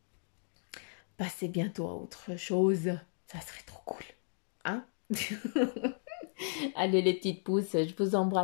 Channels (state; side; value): silent; right; digital silence